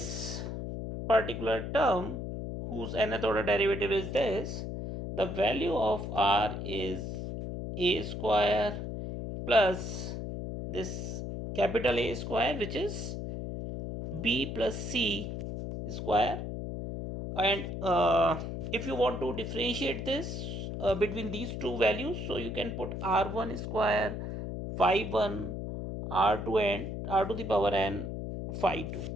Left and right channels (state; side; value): noise; left; hum, 5 dB below the sound